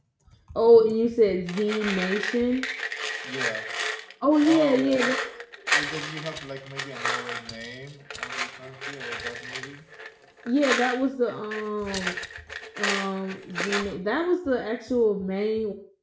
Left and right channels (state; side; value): identical; both; correlation 1.00